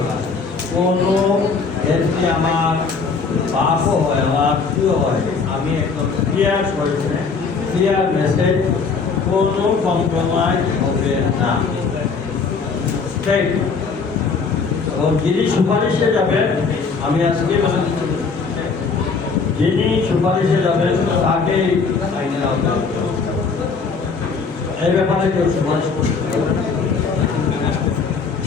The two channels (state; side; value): quieter; right; 5.0 dB